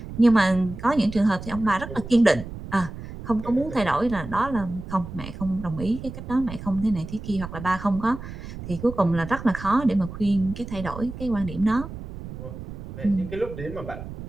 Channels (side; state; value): right; noise; rumble, 11 dB below the sound